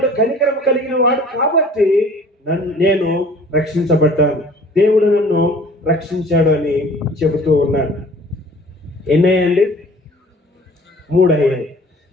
కనికరం కలిగిన వాడు కాబట్టి నేను రక్షించబడ్డాను, దేవుడు నన్ను రక్షించాడు అని చెబుతూ ఉన్నాడు. ఎన్నయ్యండి? 3 అయ్యాయి.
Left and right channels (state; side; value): normal; both; correlation 0.50